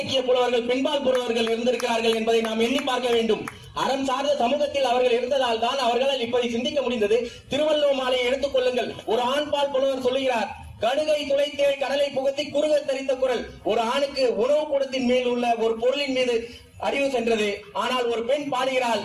புலவர்கள், பெண்பால் புலவர்கள் இருந்திருக்கிறார்கள் என்பதை நாம் எண்ணி பார்க்க வேண்டும். அறம் சார்ந்த சமூகத்தில் அவர்கள் இருந்ததால் தான் அவர்களால் இப்படி சிந்திக்க முடிந்தது. திருவள்ளுவர் மாலையை எடுத்துக் கொள்ளுங்கள். ஒரு ஆண்பால் புலவர் சொல்லுகிறார், கடுகை துளைத்தேள் கடலை புகுத்தி குறுக தரித்த குரல். ஒரு ஆணுக்கு உணவு கூடத்தின் மேல் உள்ள ஒரு பொருளின் மீது அறிவு சென்றது. ஆனால் ஒரு பெண் பாடுகிறாள்,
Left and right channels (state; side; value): identical; both; correlation 1.00